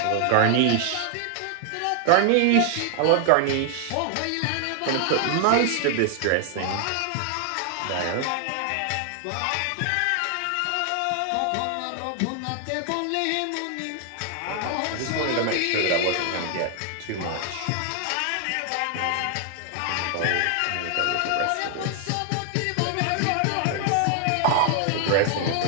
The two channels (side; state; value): both; different; correlation 0.00